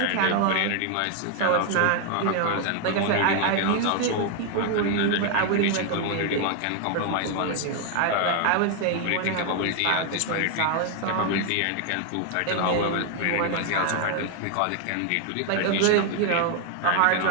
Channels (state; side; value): different; both; correlation 0.00